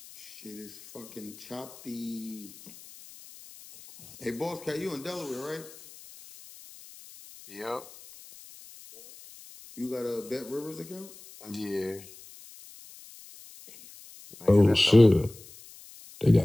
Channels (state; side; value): noise; left; hiss, 20 dB below the sound